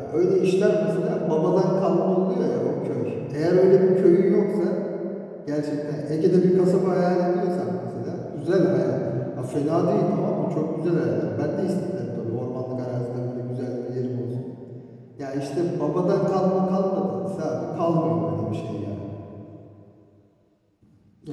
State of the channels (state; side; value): identical; both; correlation 1.00